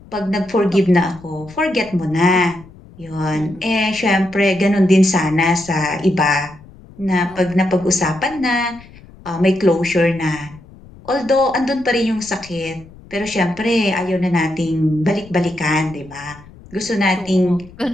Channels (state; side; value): noise; left; rumble, 21 dB below the sound